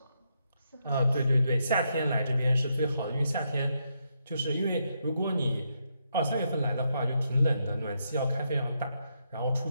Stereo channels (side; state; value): both; inverted; correlation -0.80